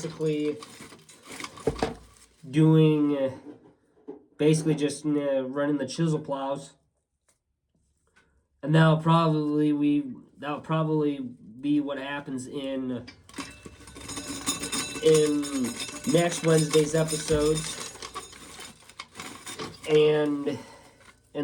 doing, basically just running the chisel plows. And that'll probably be what happens in next Wednesday's episodes, and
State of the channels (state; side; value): identical; both; correlation 1.00